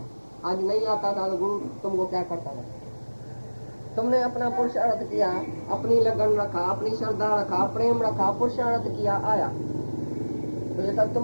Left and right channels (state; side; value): inverted; both; correlation -1.00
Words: आज नहीं आता था तो गुरु तुमको क्या करता था? तुमने अपना पुरुषार्थ किया, अपनी लगन रखा, अपनी श्रद्धा रखा, प्रेम रखा, पुरुषार्थ किया, आया, तो ये सब